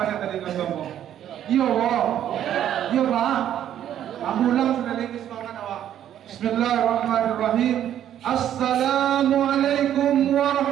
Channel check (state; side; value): quieter; left; 10.8 dB